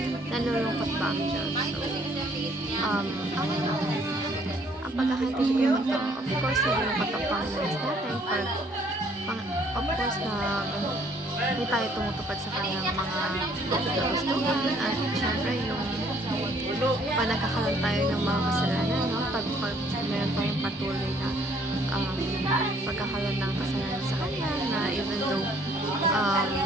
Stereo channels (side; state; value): both; normal; correlation 0.62